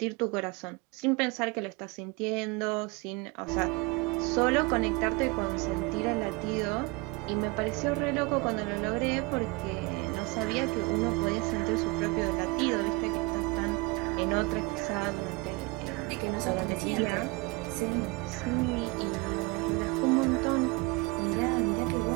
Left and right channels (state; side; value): quieter; left; 25.3 dB